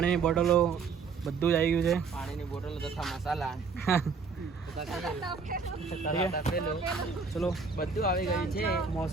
બોટલો બધું જ આવી ગયું છે. પાણીની બોટલો તથા મસાલા ચલો બધું આવી ગયું છે.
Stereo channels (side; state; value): left; quieter; 5.1 dB